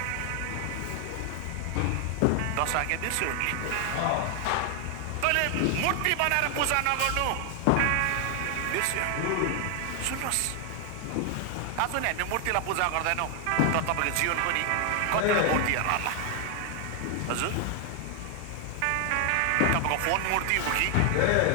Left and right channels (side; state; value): both; different; correlation 0.00